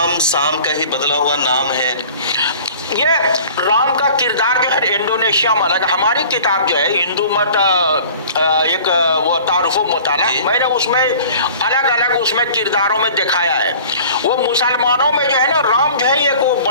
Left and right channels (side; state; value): both; inverted; correlation -0.45